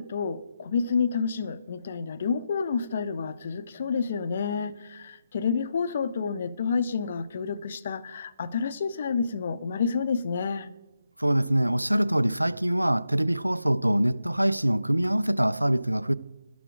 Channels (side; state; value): both; inverted; correlation -0.87